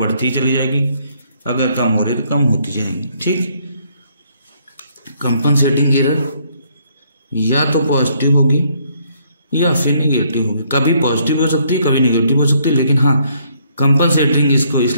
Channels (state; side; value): inverted; both; correlation -0.68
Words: ही चली जाएगी, अगर कम हो रही तो कम होती जाएगी, ठीक। कंपनसेटिंग एरर या तो पॉजिटिव होगी या फिर नेगेटिव होगी। कभी पॉजिटिव हो सकती है, कभी नेगेटिव हो सकती है, लेकिन हाँ कंपनसेटिंग इसको